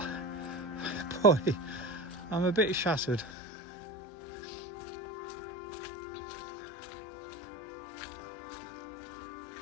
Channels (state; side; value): drops out; right; at 3.3 s